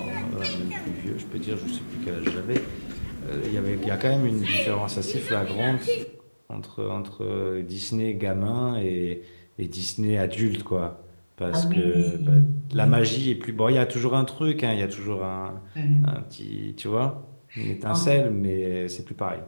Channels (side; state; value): both; inverted; correlation -1.00